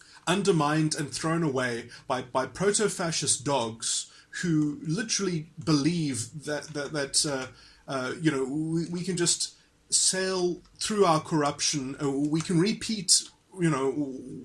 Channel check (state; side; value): identical; both; correlation 1.00